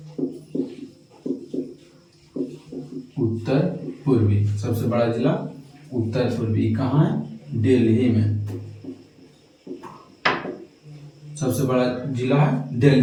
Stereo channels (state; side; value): identical; both; correlation 1.00